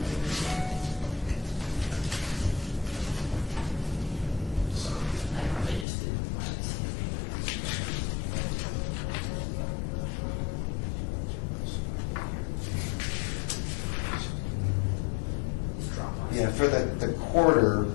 They just did. yeah, for the quarter,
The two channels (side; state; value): right; drops out; at 5.9 s